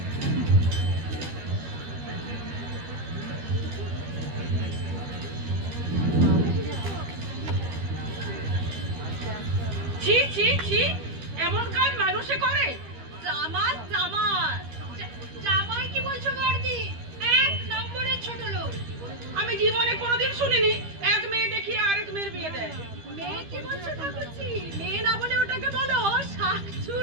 ছি ছি, এমন কাজ মানুষে করে? জামাই জামাই জামাই কি বলছো বর্দি? এক নম্বরের ছোট লোক। আমি জীবনে কোনোদিন শুনিনি এক মেয়ে দেখিয়ে আরেক মেয়ের বিয়ে দেয়। মেয়ে কি বলছো ঠাকুরজি? মেয়ে না বলে ওটাকে বলো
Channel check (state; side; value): late; left; 13 ms